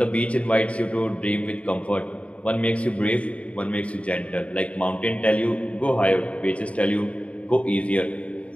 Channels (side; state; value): right; late; 0.064 ms